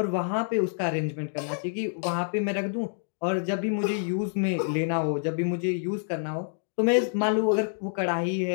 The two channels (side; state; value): right; silent; digital silence